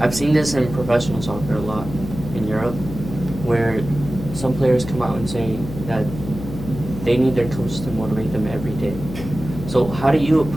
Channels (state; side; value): noise; left; hum, 10 dB below the sound